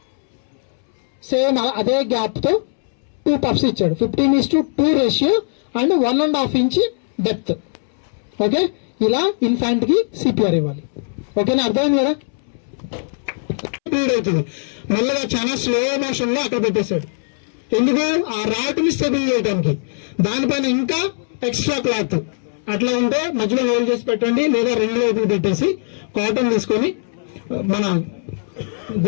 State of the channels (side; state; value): right; silent; 66 dB below the other